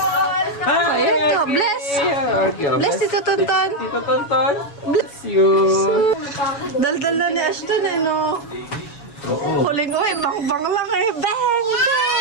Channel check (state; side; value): late; right; 7.1 ms